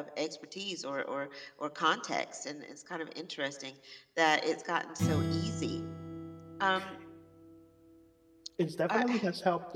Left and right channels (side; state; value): both; identical; correlation 1.00